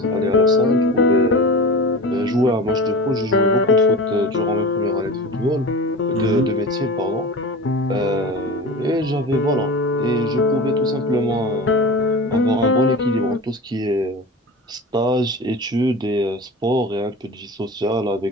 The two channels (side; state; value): both; normal; correlation 0.32